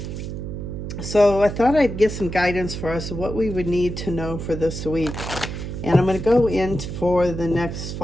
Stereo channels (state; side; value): noise; right; hum, 6 dB below the sound